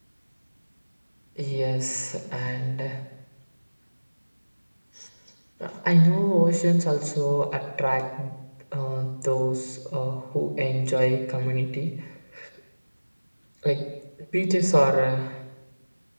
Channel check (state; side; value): inverted; both; correlation -1.00